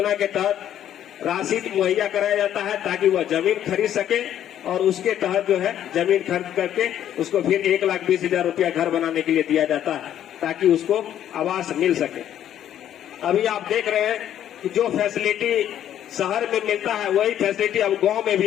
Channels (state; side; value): quieter; right; 10.8 dB